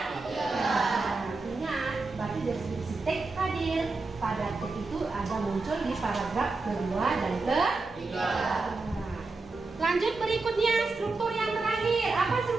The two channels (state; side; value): quieter; left; 3.7 dB